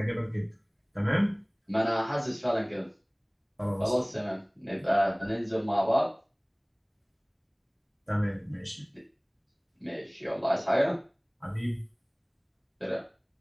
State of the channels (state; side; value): identical; both; correlation 1.00